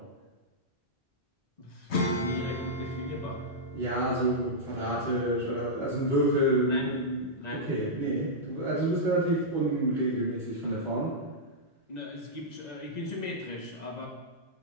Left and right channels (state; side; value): normal; both; correlation -0.10